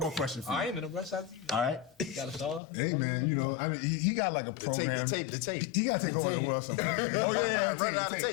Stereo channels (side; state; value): right; drops out; at 2.6 s